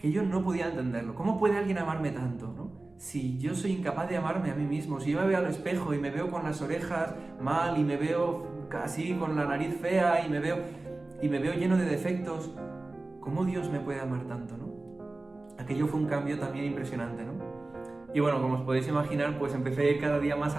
yo no podía entenderlo. ¿Cómo puede alguien amarme tanto, no? Si yo soy incapaz de amarme a mí mismo, si yo me veo al espejo y me veo con las orejas mal y me veo así con la nariz fea y me veo lleno de defectos, ¿cómo Dios me puede amar tanto, no? Aquello fue un cambio también impresionante, ¿no? Y bueno, como os podéis imaginar, pues empecé a ir cada día más a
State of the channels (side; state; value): left; quieter; 3.1 dB